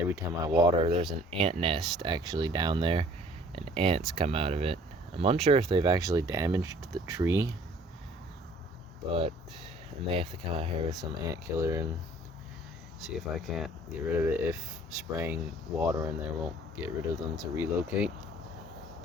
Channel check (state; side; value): normal; both; correlation 0.54